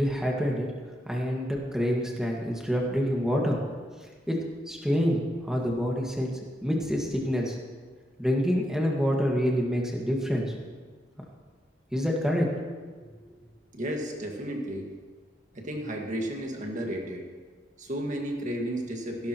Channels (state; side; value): normal; both; correlation 0.82